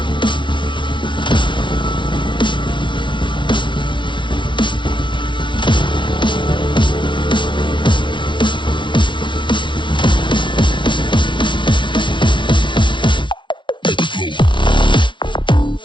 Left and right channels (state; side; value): late; right; 0.24 ms